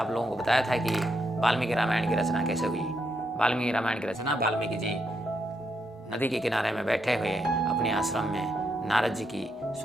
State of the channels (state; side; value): normal; both; correlation 0.80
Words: लोगों को बताया था कि वाल्मीकि रामायण की रचना कैसे हुई। वाल्मीकि रामायण की रचना वाल्मीकि जी नदी के किनारे में बैठे हुए अपने आश्रम में नारद जी की